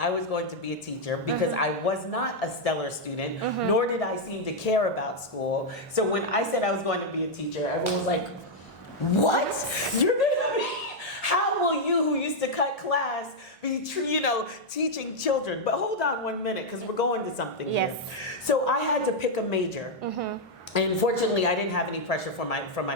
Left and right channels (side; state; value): both; normal; correlation -0.02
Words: was going to be a teacher, because I was not a stellar student, nor did I seem to care about school. So when I said I was going to be a teacher, everyone was like, what? You're gonna be? How will you, who used to cut class, be teaching children? But hold on 1 minute, because we're going to something here. So I had to pick a major. And fortunately, I didn't have any pressure from my